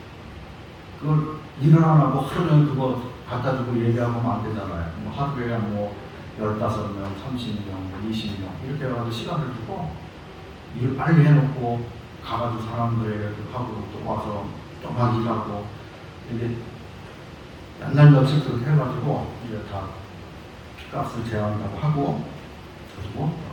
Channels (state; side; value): identical; both; correlation 1.00